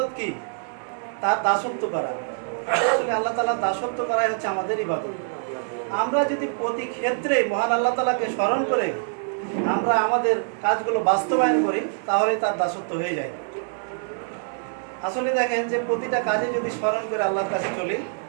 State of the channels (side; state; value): left; silent; 62 dB below the other